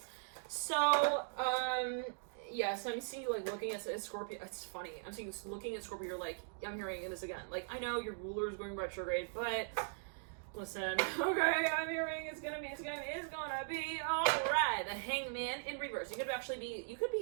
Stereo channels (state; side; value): silent; left; digital silence